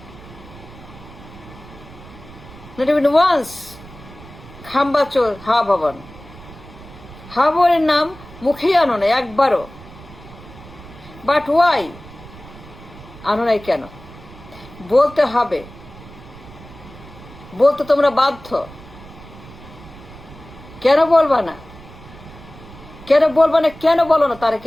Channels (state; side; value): noise; right; rumble, 18 dB below the sound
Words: Not even once. খাম্বাচোর, হাওয়া ভবন। হাওয়া ভবনের নাম মুখেই আনো না একবারও। বাট ওয়াই আনো নাই কেন? বলতে হবে, বলতে তোমরা বাধ্য। কেন বলবা না? কেন বলবা না? কেন বলো না